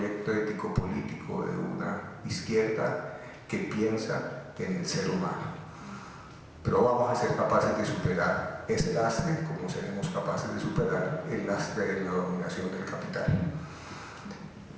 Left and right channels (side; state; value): both; identical; correlation 1.00